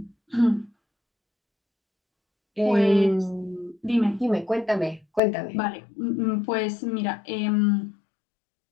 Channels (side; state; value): right; drops out; at 5.2 s